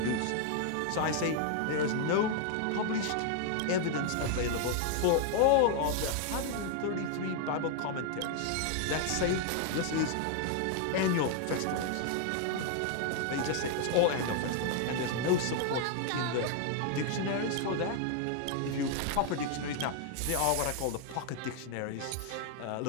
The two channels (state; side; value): different; both; correlation 0.00